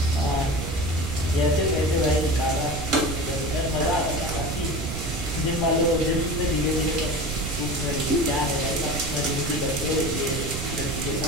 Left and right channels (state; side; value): noise; right; rumble, 5 dB below the sound